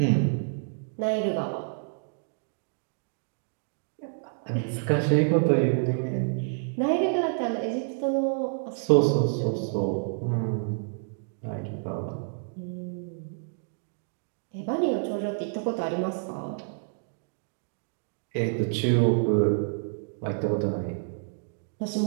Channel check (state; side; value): silent; left; digital silence